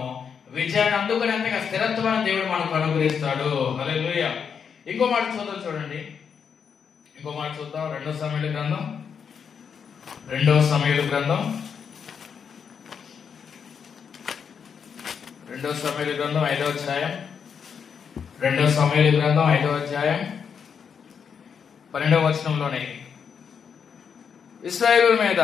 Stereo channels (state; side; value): quieter; right; 6.9 dB